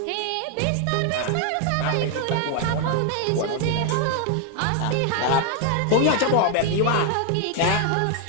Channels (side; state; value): both; different; correlation 0.00